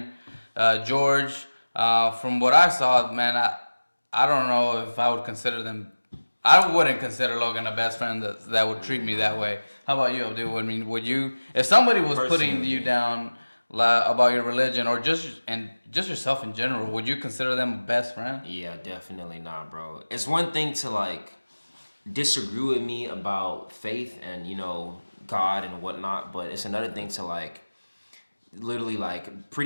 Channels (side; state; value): both; inverted; correlation -1.00